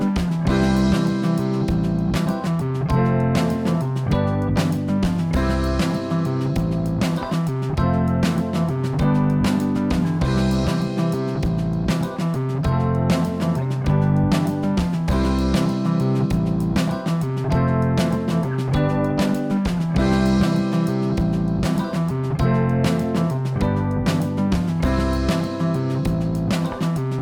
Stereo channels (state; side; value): identical; both; correlation 1.00